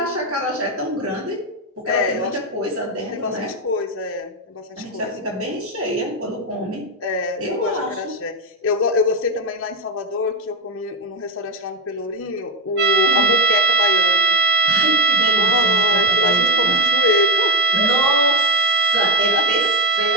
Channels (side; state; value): both; normal; correlation 0.09